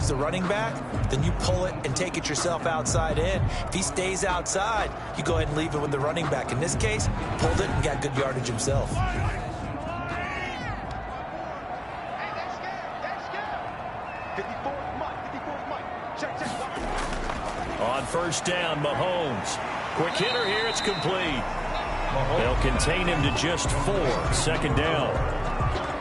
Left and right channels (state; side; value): identical; both; correlation 1.00